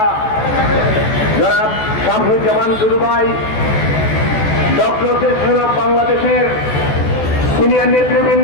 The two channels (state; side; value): late; right; 14 ms